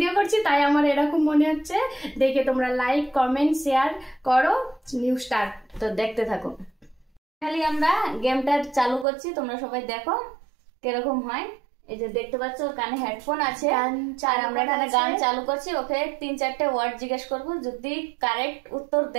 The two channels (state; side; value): drops out; left; at 9.1 s